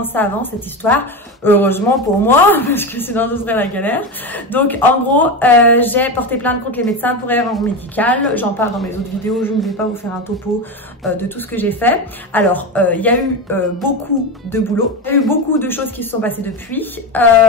ça avance cette histoire. Heureusement pour moi, parce que sinon ce serait la galère. Donc en gros, j'ai porté plainte contre les médecins pour erreur médicale. J'en parle dans mes autres vidéos, je ne vais pas vous faire un topo de tout ce que j'ai fait. Alors, il y a eu beaucoup de boulot, il y a eu beaucoup de choses qui se sont passées depuis.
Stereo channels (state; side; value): normal; both; correlation 0.19